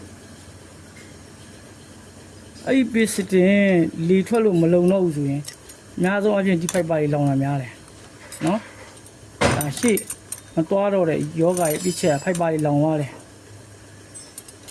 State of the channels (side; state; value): both; identical; correlation 1.00